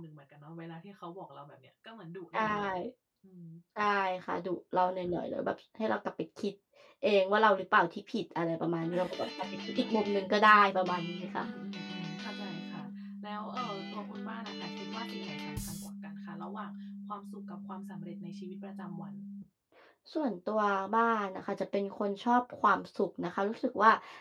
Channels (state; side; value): identical; both; correlation 1.00